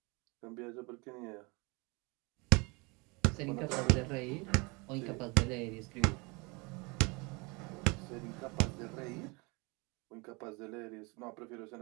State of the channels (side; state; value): left; quieter; 28.0 dB